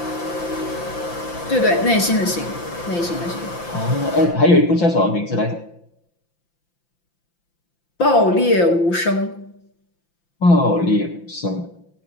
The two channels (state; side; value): late; right; 5.8 ms